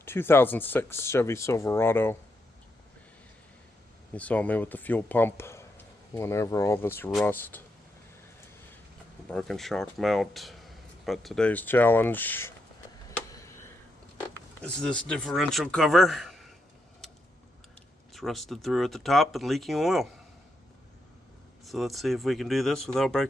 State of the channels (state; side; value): normal; both; correlation 0.81